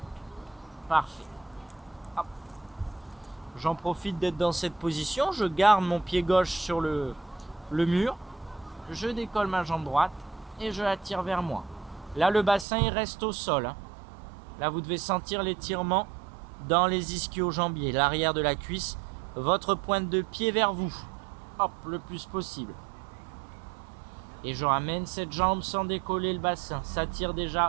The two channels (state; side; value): drops out; left; at 12.7 s